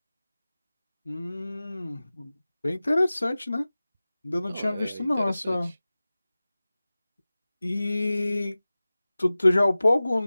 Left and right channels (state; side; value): inverted; both; correlation -0.97